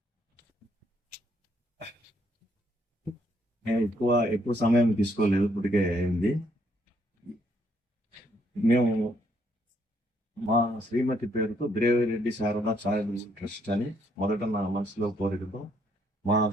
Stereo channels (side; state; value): both; normal; correlation 0.71